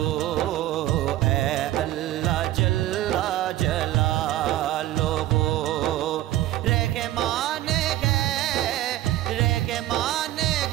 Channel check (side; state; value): left; quieter; 14.5 dB